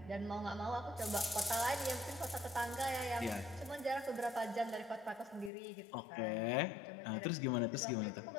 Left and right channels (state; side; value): drops out; right; at 5.5 s